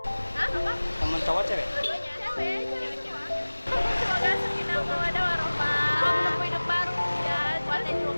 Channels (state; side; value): inverted; both; correlation -1.00